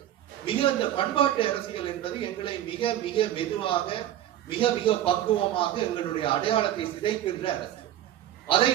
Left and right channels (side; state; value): left; quieter; 12.1 dB